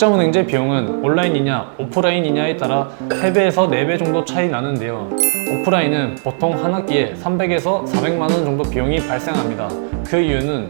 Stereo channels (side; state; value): left; silent; digital silence